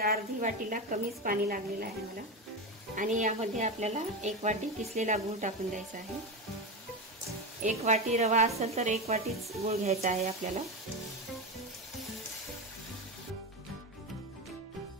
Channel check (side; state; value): both; normal; correlation 0.17